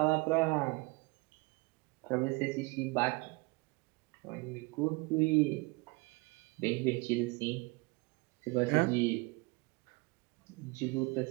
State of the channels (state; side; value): quieter; left; 26.8 dB